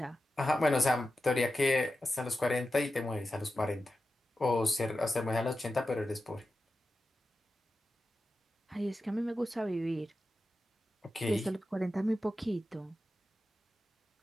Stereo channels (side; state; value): both; normal; correlation 0.92